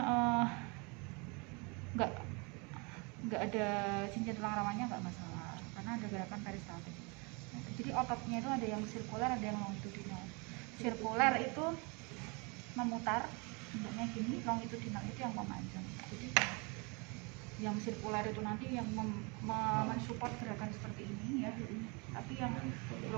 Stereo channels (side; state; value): left; quieter; 30.4 dB